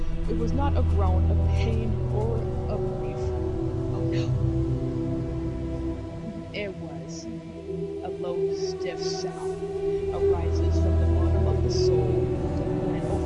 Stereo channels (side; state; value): both; identical; correlation 1.00